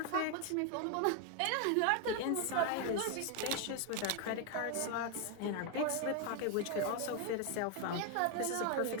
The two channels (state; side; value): different; both; correlation 0.01